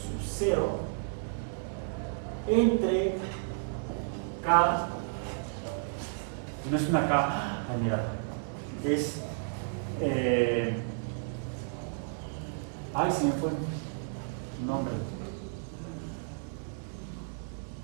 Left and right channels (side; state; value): left; silent; 56 dB below the other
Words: 0 entre k, no es una k, mira, es ay, se me fue el nombre.